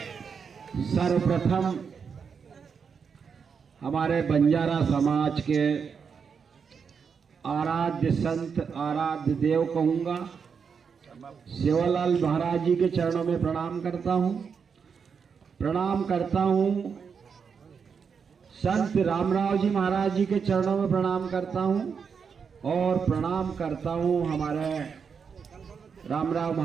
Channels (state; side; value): quieter; left; 6.2 dB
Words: सर्वप्रथम हमारे बंजारा समाज के आराध्य संत, आराध्य देव कहूँगा, सेवालाल महाराज जी के चरणों में प्रणाम करता हूँ। प्रणाम करता हूँ संत रामराव जी महाराज जी के चरणों में प्रणाम करता हूँ और प्रणाम करता हूँ हमारे रामराव